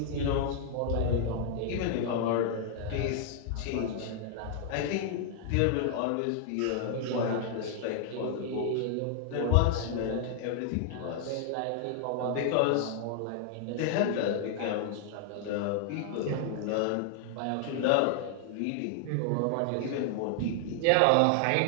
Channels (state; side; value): different; both; correlation 0.00